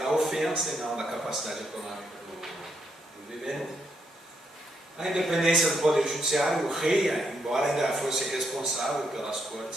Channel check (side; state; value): both; normal; correlation 0.77